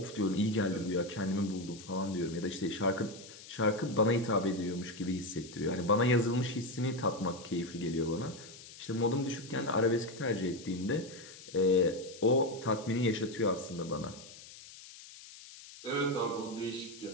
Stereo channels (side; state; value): left; noise; hiss, 17 dB below the sound